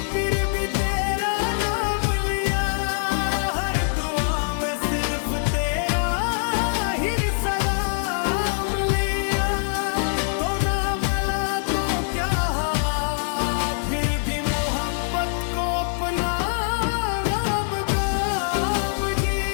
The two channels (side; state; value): right; silent; 63 dB below the other